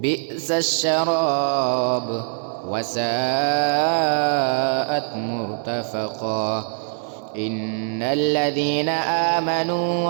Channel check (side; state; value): left; silent; digital silence